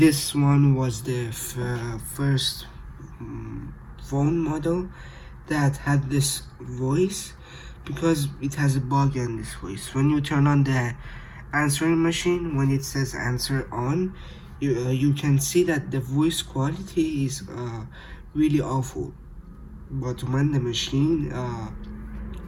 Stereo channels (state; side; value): identical; both; correlation 1.00